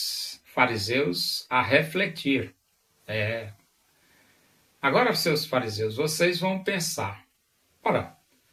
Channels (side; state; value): both; identical; correlation 1.00